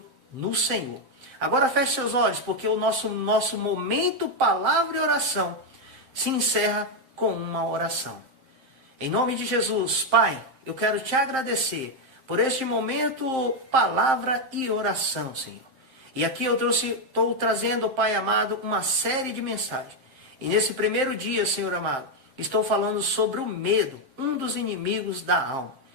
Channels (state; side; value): late; left; 7.6 ms